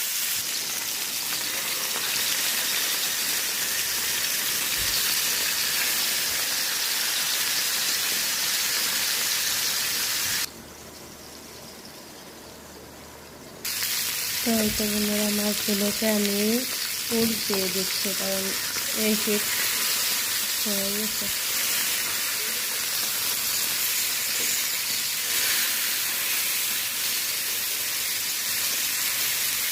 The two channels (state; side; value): identical; both; correlation 1.00